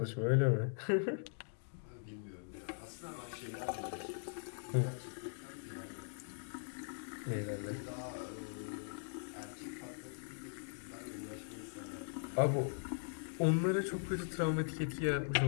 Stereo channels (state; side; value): silent; right; digital silence